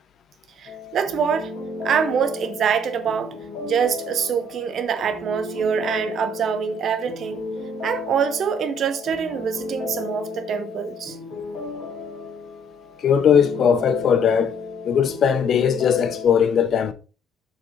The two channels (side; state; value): both; normal; correlation 0.61